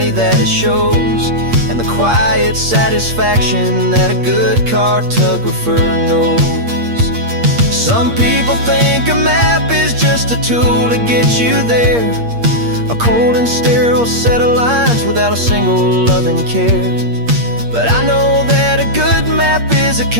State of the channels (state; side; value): late; left; 8.5 ms